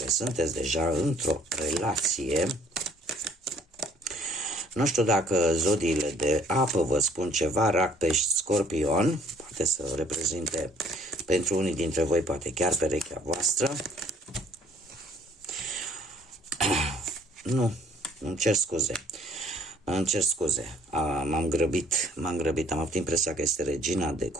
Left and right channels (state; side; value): normal; both; correlation 0.59